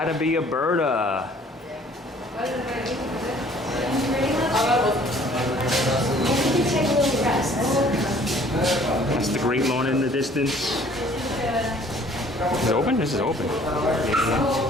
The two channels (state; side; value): normal; both; correlation 0.55